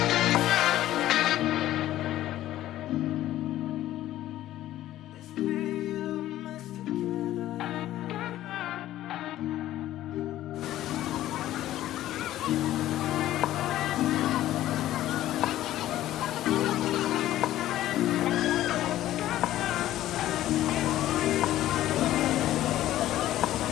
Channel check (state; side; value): quieter; right; 13.9 dB